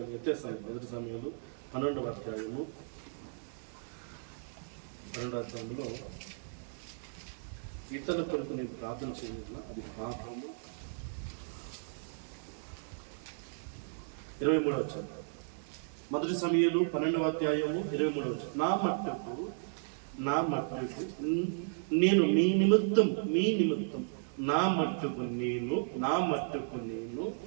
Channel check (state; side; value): silent; left; digital silence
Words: అధ్యాయము 12వ అధ్యాయంలో ఇతరుల కొరకు నేను ప్రార్థన చేయలేదు, అది పాపము. 23వ వచనం. మొదటి సమయాలు 12వ అధ్యాయము 23వ వచనం. నా మట్టుకు నేను మీ నిమిత్తం నా మట్టుకు నేను